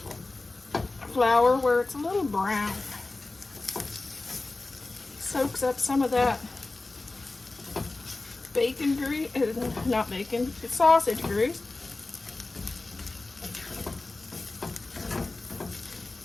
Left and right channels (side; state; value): right; quieter; 3.2 dB